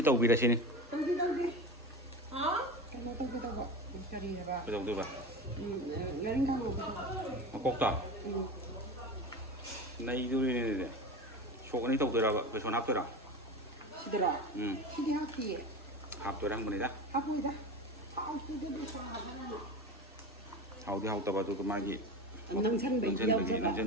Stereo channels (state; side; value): normal; both; correlation 0.28